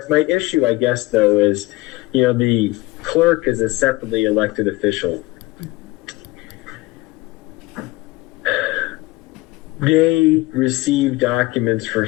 issue, I guess, though, is, the clerk is a separately elected official. They receive documents for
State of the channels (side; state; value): right; quieter; 20.5 dB